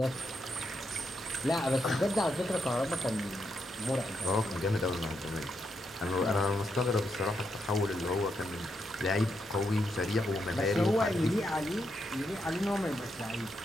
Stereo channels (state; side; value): normal; both; correlation 0.81